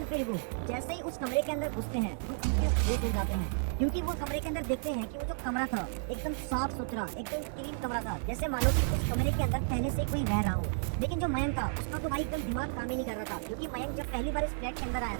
फिर वो जैसे ही उस कमरे के अंदर घुसते हैं तो उनके होश उड़ जाते हैं क्योंकि वो कमरे के अंदर देखते हैं कि वो जो कमरा था एकदम साफ सुथरा, एकदम क्लीन कमरा था, जैसे मानो कि उस कमरे के अंदर पहले से कोई रह रहा हो। लेकिन जो मयंक था उसका तो भाई एकदम दिमाग काम ही नहीं कर रहा था क्योंकि मयंक जब पहली बार इस फ्लैट के अंदर आया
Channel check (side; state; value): left; silent; digital silence